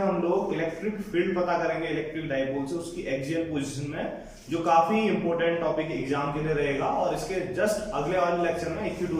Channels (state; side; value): identical; both; correlation 1.00